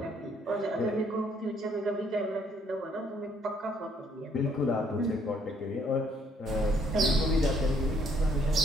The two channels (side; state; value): both; normal; correlation 0.66